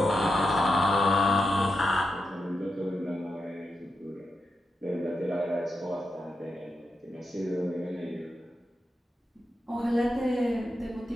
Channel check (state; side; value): normal; both; correlation 0.87